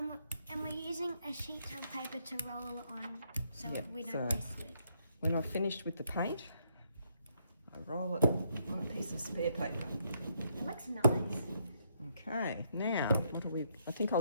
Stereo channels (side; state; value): both; inverted; correlation -0.74